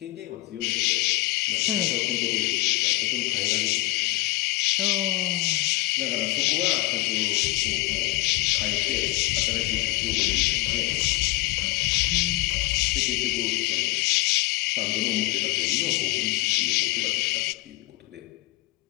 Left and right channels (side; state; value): right; quieter; 19.9 dB